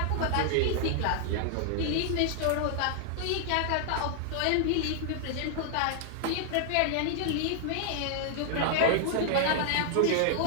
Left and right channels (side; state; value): both; different; correlation -0.01